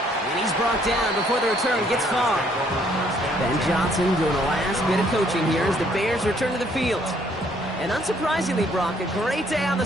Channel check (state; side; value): normal; both; correlation 0.65